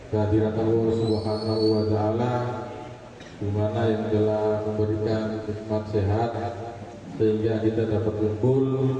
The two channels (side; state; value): both; identical; correlation 1.00